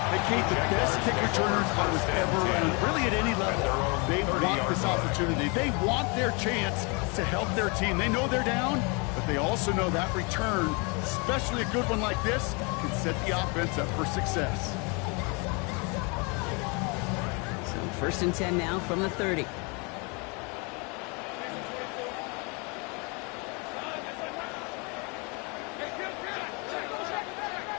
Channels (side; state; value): right; quieter; 31.3 dB